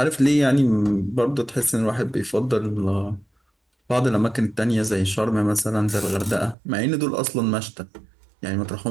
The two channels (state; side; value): drops out; left; at 6.6 s